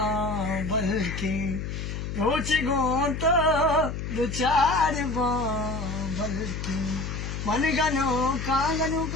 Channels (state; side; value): noise; left; hum, 5 dB below the sound